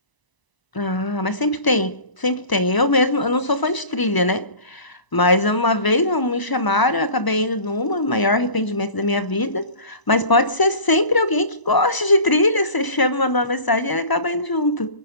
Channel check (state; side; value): late; right; 1.0 ms